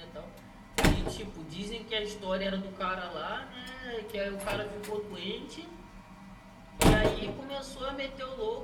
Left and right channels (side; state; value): both; identical; correlation 1.00